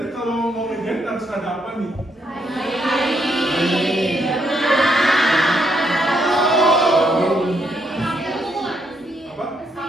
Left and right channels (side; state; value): both; normal; correlation 0.75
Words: kalau mau ngejahit harus ada apa nih? Apa?